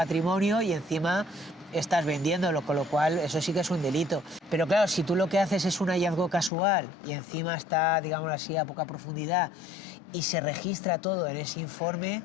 y encima estás vendiéndolo, con lo cual eso sí que es un delito. Pero claro, si tú lo que haces es un hallazgo casual y encima está, digamos así, a poca profundidad y se registra todo en ese informe,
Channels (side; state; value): right; drops out; at 6.5 s